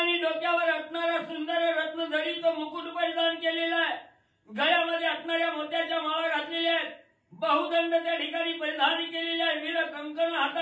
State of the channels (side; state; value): both; identical; correlation 1.00